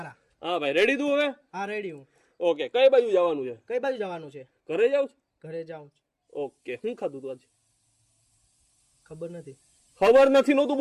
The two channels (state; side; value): identical; both; correlation 1.00